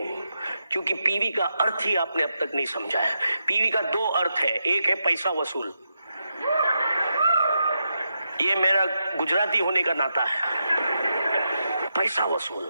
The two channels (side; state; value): both; inverted; correlation -0.85